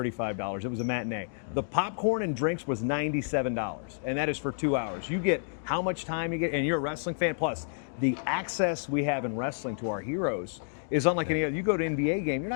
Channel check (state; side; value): silent; right; digital silence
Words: It was a matinee. The popcorn and drinks was $97, and that is for 2 hours. You get how much time you get, and you're a wrestling fan. Plus, the access we have in wrestling to our heroes is unlike any other. You go to an NBA game, you're